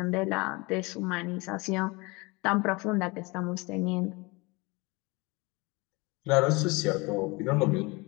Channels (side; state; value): right; quieter; 25.6 dB